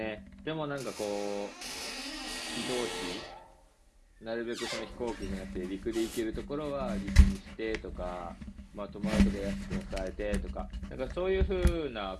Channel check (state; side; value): identical; both; correlation 1.00